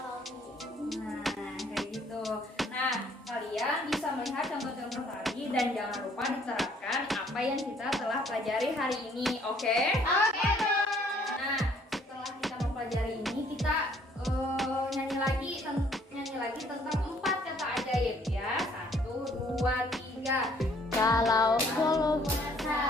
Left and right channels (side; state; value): both; normal; correlation 0.62